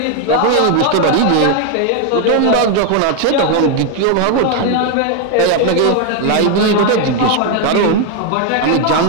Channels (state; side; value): different; both; correlation 0.01